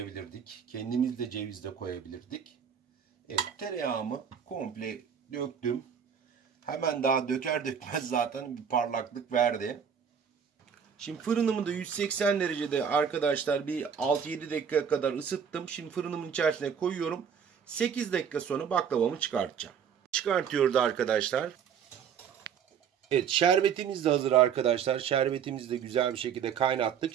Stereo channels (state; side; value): quieter; left; 7.5 dB